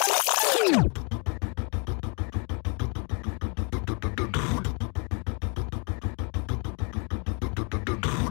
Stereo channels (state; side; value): quieter; right; 36.2 dB